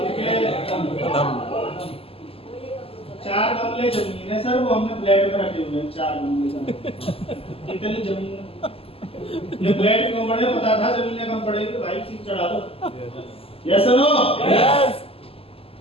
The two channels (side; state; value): right; late; 0.28 ms